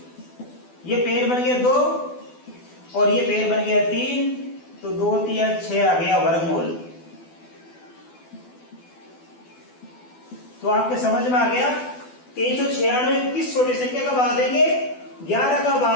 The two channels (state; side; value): late; right; 12 ms